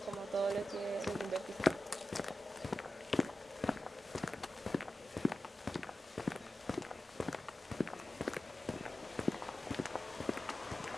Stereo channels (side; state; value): both; normal; correlation 0.93